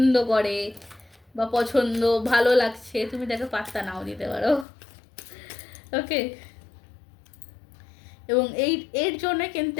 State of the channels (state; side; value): drops out; right; at 4.7 s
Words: করে বা পছন্দ ভালো লাগছে, তুমি তাকে পাত্তা নাও দিতে পারো। ওকে, এবং এর জন্য কিন্তু